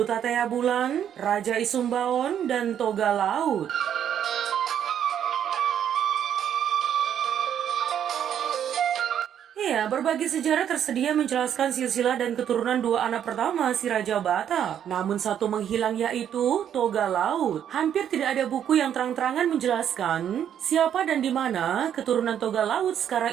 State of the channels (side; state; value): left; quieter; 9.5 dB